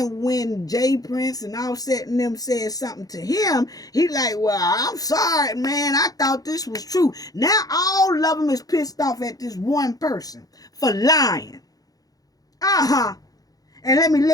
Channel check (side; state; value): right; late; 0.18 ms